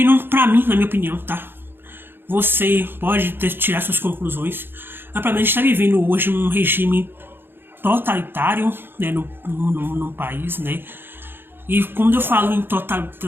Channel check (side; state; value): left; late; 0.10 ms